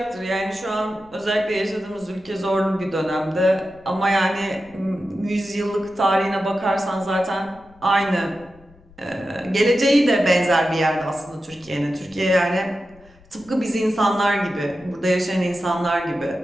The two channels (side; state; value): left; noise; rumble, 27 dB below the sound